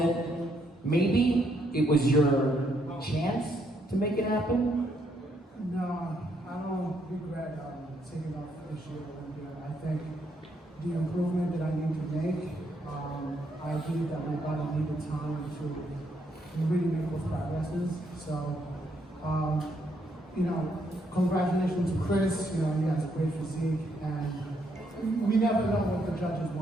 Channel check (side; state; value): both; normal; correlation 0.74